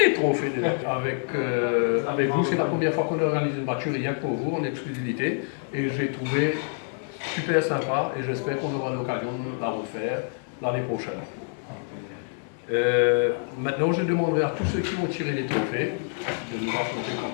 trophées déjà. Avec vous, c'est la première fois qu'on organise une voiture rien que pour vous, en exclusivité. Et j'ai trouvé super sympa et j'espère qu'on aura l'occasion de la refaire l'année prochaine. Maintenant, je demanderai à tous ceux qui vont tirer les trophées de nous raconter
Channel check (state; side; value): silent; right; 58 dB below the other